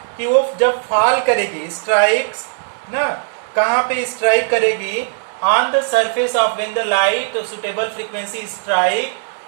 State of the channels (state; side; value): silent; left; digital silence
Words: कि वो जब फॉल करेगी, स्ट्राइक्स ना कहाँ पे स्ट्राइक करेगी? on the surface of when the light suitable frequency strike